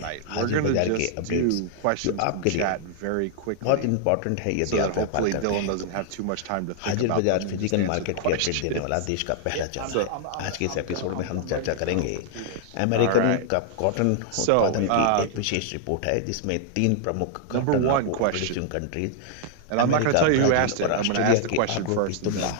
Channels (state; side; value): different; both; correlation -0.01